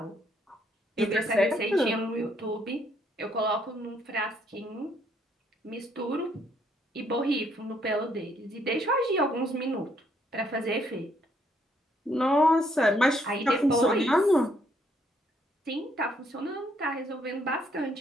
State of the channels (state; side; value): normal; both; correlation 0.69